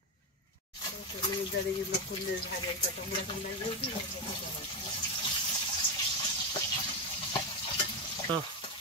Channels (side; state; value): both; normal; correlation 0.10